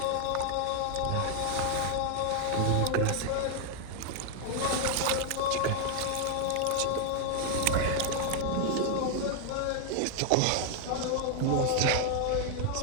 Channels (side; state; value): both; different; correlation 0.01